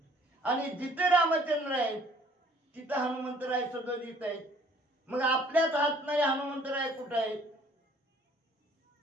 आणि जिथे रामचंद्र आहेत तिथं हनुमंतराय सदोदित आहेत. मग आपल्याच हात नाही हनुमंतराय कुठं आहेत?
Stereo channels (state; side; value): normal; both; correlation 0.57